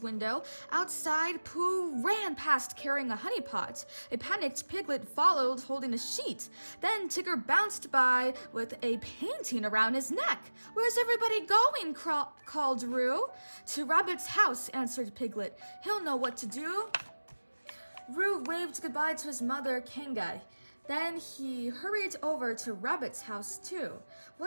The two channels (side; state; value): both; inverted; correlation -1.00